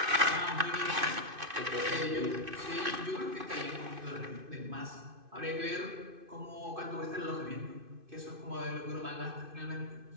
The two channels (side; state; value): left; late; 2.5 ms